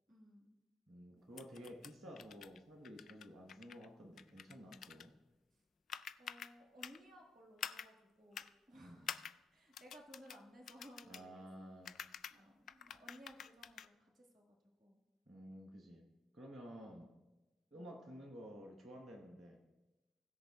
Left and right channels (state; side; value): quieter; right; 3.7 dB